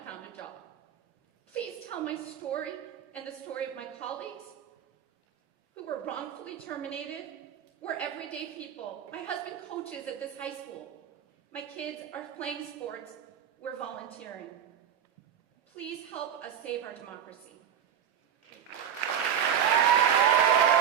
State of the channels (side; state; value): left; quieter; 9.0 dB